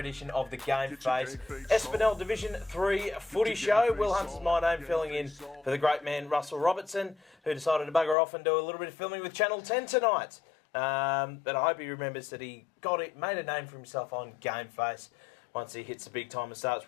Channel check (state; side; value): drops out; right; at 8.2 s